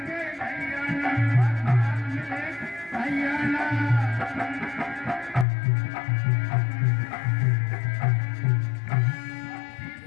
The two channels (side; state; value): right; drops out; at 5.5 s